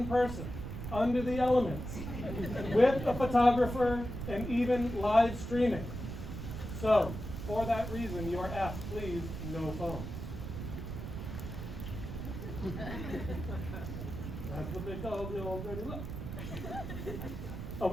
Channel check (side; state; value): right; noise; rumble, 7 dB below the sound